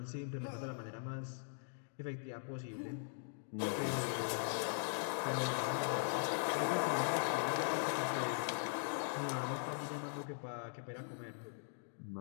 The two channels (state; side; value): silent; right; digital silence